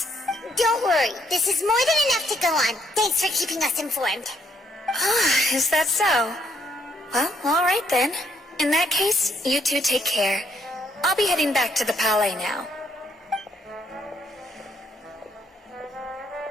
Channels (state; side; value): normal; both; correlation 0.70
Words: Don't worry, this is more than enough to go on. Thanks for keeping us informed. Is that so? Well, alright then. In that case, you two take care. I'll be heading back to the Palais now.